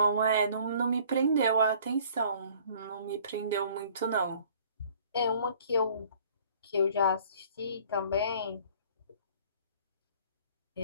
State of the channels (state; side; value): inverted; both; correlation -0.54